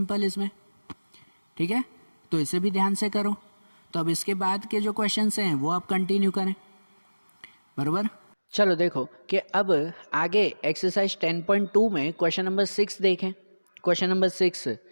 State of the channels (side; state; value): both; inverted; correlation -1.00